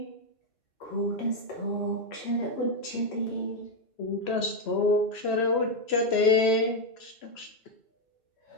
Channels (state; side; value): late; right; 3.0 ms